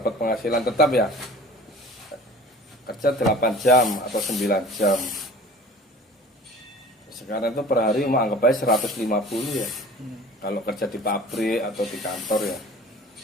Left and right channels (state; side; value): normal; both; correlation 0.43